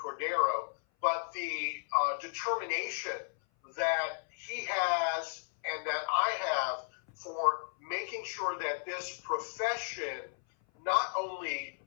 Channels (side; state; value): right; silent; 55 dB below the other